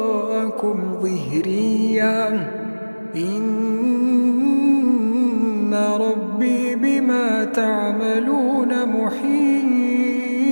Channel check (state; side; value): inverted; both; correlation -1.00